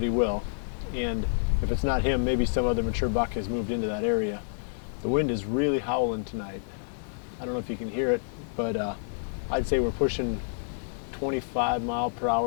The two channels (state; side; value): silent; right; 58 dB below the other